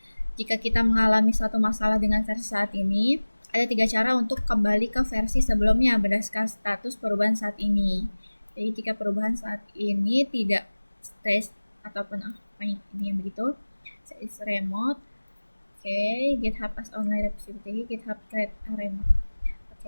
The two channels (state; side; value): inverted; both; correlation -1.00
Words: Jika kita mengalami suatu masalah dengan versi saat ini, ada 3 cara untuk kembali ke versi sebelumnya berdasarkan status perubahan saat ini. Jadi jika perubahan saat ini tidak stage ataupun apa ini yang begitu, is remote, Oke, GitHub as online repository, GitHub thread arena.